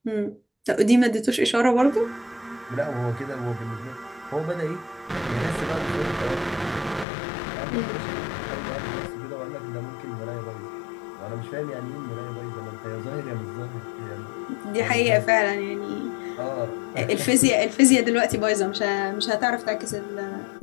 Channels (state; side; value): drops out; right; at 7.1 s